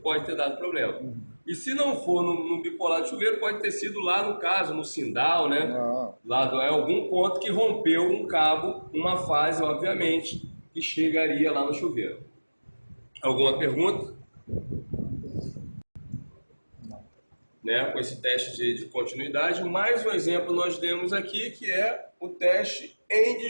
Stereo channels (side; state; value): both; inverted; correlation -1.00